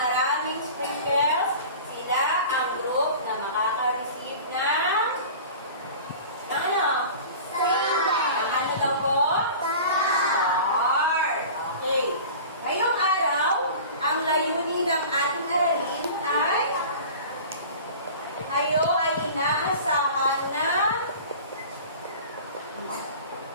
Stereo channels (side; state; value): both; inverted; correlation -0.39